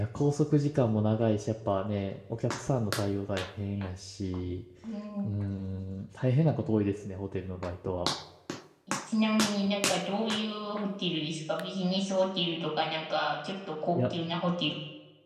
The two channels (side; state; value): both; identical; correlation 1.00